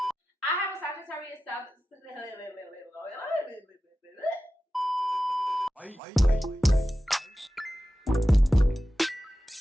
I have a Sagittarius 7th.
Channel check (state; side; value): normal; both; correlation 0.93